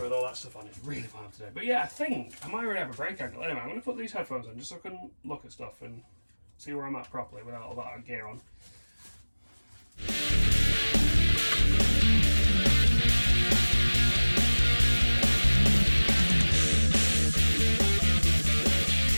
with all that stuff on, it's really hard today. But yeah, I think I might already have a break angle. Anyway, I'm going to put these headphones on just so I can look at stuff and see where I'm at properly without all that gear on.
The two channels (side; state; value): both; inverted; correlation -1.00